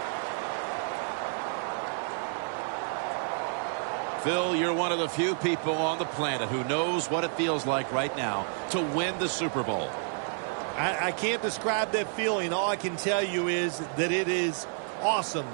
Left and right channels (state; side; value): silent; left; 58 dB below the other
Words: Phil, you're one of the few people on the planet who knows what it feels like right now to win the Super Bowl. I can't describe that feeling. All I can tell you is that it is awesome,